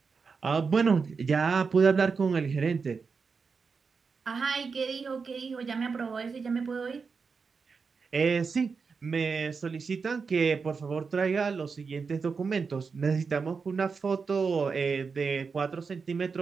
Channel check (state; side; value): quieter; left; 5.2 dB